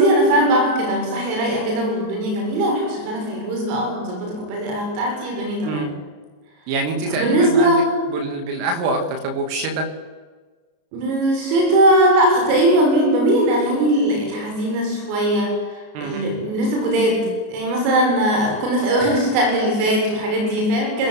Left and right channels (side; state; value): left; late; 33 ms